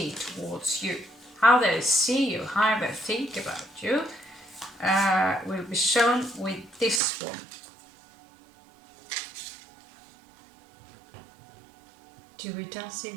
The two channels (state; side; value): drops out; left; at 7.0 s